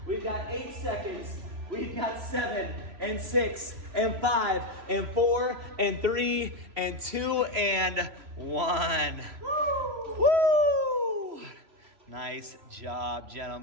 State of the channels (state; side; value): late; left; 3.0 ms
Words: We've got 8 seconds. We've got 7 and 6 and 5 and 4 and 3 and 2 and 1. Woo! Woo! Nice job,